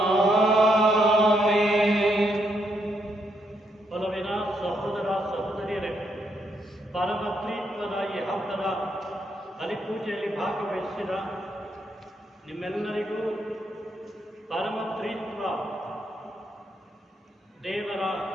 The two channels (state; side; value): normal; both; correlation 0.77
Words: ಒಲವಿನ ಸಹೋದರ ಸಹೋದರಿಯರೇ, ಪರಮ ತ್ರಿತ್ವದ ಈ ಹಬ್ಬದ ಬಲಿಪೂಜೆಯಲ್ಲಿ ಭಾಗವಹಿಸಿದ ನಿಮ್ಮೆಲ್ಲರಿಗೂ ಪರಮ ತ್ರಿತ್ವ ದೇವರ